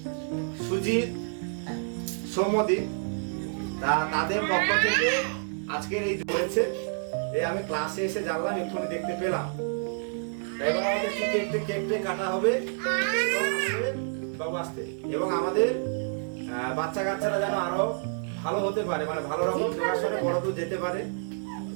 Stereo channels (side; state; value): left; silent; digital silence